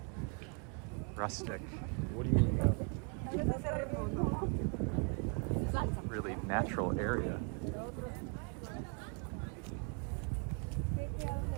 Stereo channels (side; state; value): left; quieter; 36.5 dB